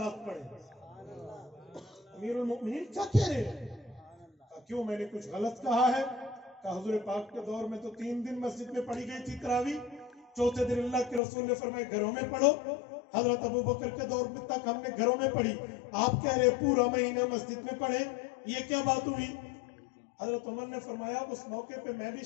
پڑھے. امیر المؤمنین کیا کہہ رہے ہیں؟ کیوں میں نے کچھ غلط کہا ہے؟ کہ حضور پاک کے دور میں تو 3 دن مسجد میں پڑھی گئی تھی تراویح، چوتھے دن اللہ کے رسول نے فرمایا گھروں میں پڑھو. حضرت ابو بکر کے دور میں تک ہم نے گھروں میں پڑھی، آپ کہہ رہے پورا مہینہ مسجد میں پڑھے، یہ کیا بات ہوئی؟ حضرت عمر نے فرمایا اس موقع پہ میں بھی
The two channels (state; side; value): drops out; right; at 11.2 s